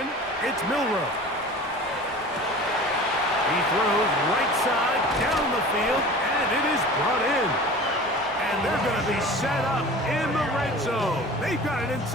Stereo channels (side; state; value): both; normal; correlation 0.39